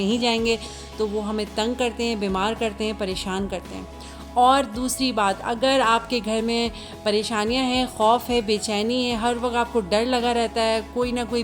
जाएंगे तो वो हमें तंग करते हैं, बीमार करते हैं, परेशान करते हैं। और दूसरी बात, अगर आपके घर में परेशानियां हैं, खौफ है, बेचैनी है, हर वक्त आपको डर लगा रहता है, कोई ना कोई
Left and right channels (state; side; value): identical; both; correlation 1.00